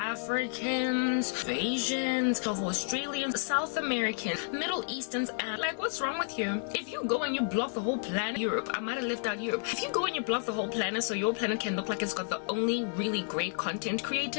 of Asians, of Australians, South Americans, Middle Easterns, and like, what's wrong with you? If you go and you block the whole planet, Europe, I might have left out Europe. If you go and you block the whole planet so your planet can look like it's got the only really great content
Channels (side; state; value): right; silent; digital silence